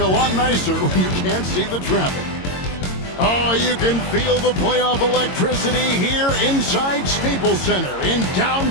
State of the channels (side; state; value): right; late; 22 ms